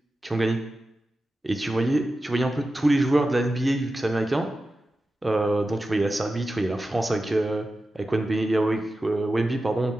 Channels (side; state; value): both; normal; correlation 0.93